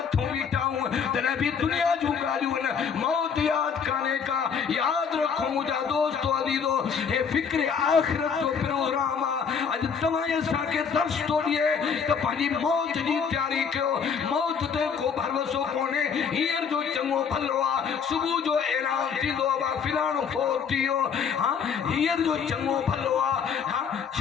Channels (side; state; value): right; quieter; 6.6 dB